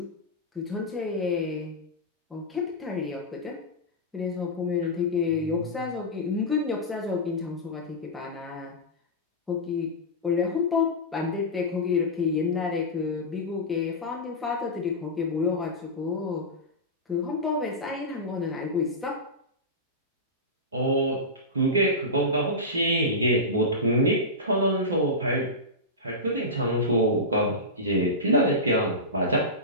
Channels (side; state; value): both; normal; correlation -0.13